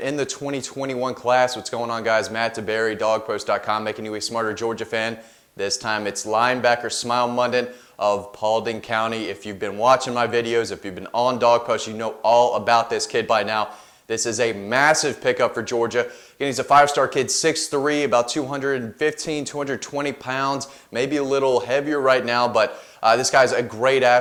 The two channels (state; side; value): identical; both; correlation 1.00